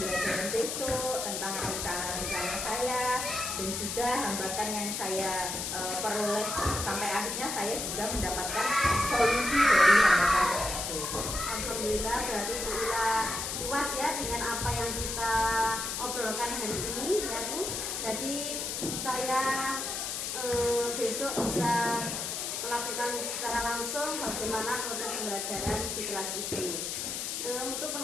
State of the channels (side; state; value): left; noise; hiss, 3 dB below the sound